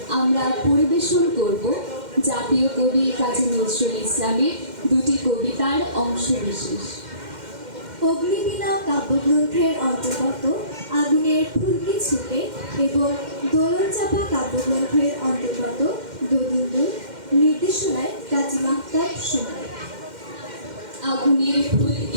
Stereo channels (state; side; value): late; left; 2.1 ms